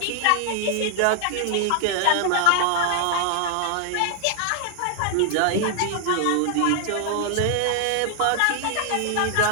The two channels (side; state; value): both; different; correlation 0.00